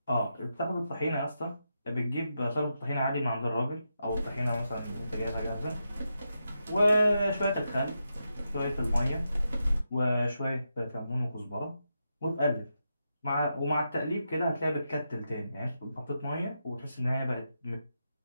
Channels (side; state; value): both; inverted; correlation -0.86